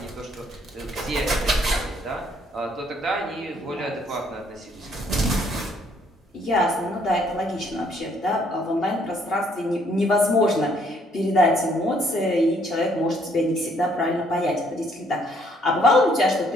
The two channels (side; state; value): both; normal; correlation 0.66